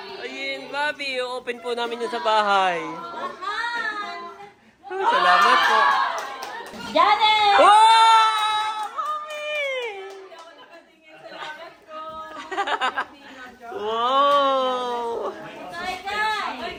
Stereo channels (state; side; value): identical; both; correlation 1.00